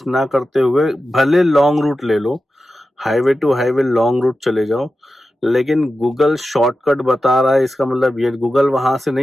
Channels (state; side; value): normal; both; correlation 0.92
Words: ना करते हुए भले लॉन्ग रूट ले लो, highway to highway long route चले जाओ, लेकिन गूगल शॉर्टकट बता रहा है इसका मतलब ये गूगल वहां से